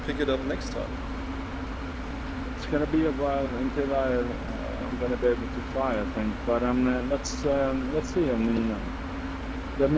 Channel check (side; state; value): both; identical; correlation 1.00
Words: pick it up next time. It's gonna be a while until I'm gonna be able to fly, I think. But let's see. I mean, let